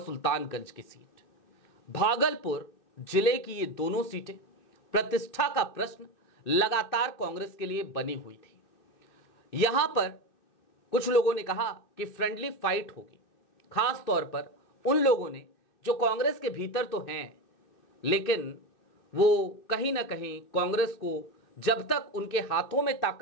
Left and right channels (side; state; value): right; late; 2.6 ms